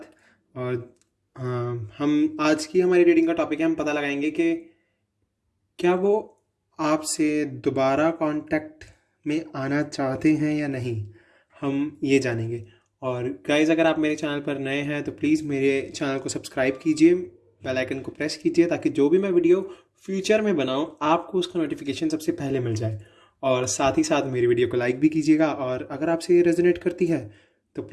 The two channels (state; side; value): identical; both; correlation 1.00